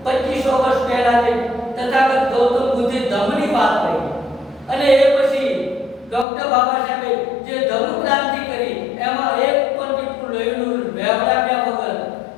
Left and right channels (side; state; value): right; drops out; at 6.2 s